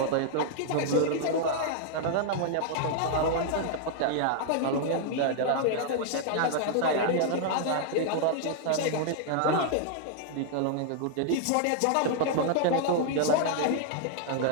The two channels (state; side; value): different; both; correlation -0.01